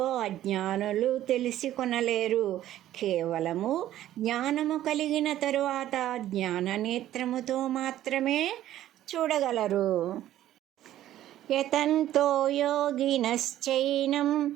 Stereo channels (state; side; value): quieter; left; 13.0 dB